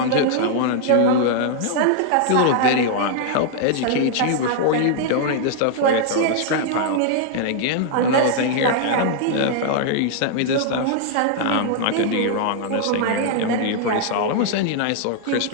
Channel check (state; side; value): different; both; correlation 0.00